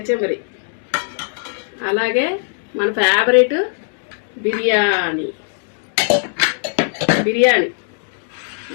అలాగే మన ఫేవరెట్ బిర్యానీ,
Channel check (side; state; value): right; silent; 66 dB below the other